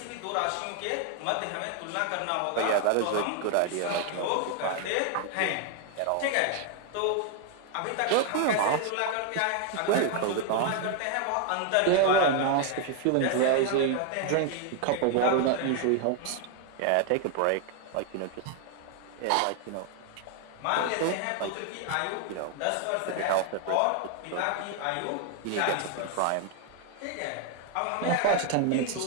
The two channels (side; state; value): both; different; correlation 0.00